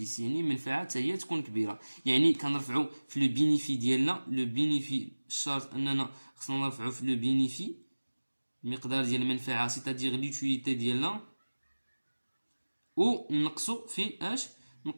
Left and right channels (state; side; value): inverted; both; correlation -1.00